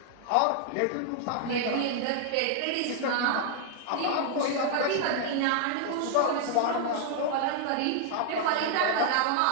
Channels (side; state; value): both; different; correlation -0.01